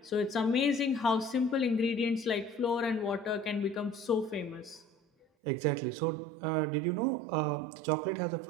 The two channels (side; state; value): left; drops out; at 5.2 s